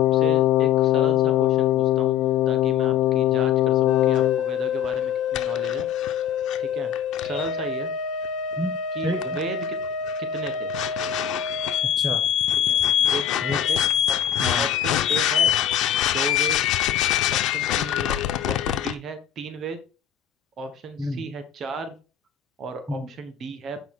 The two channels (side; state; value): right; quieter; 8.9 dB